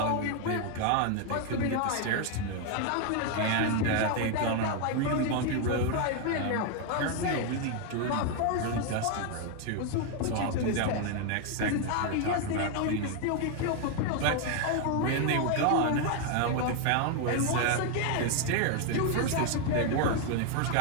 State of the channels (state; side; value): different; both; correlation 0.01